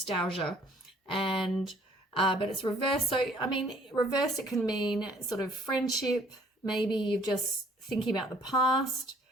And but it's reversed. So, I mean, reversed, it can mean sort of friendship. Maybe you're just thinking about the past.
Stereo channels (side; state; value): both; normal; correlation 0.59